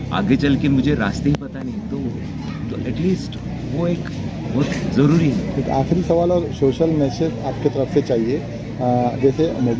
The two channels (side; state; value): both; identical; correlation 1.00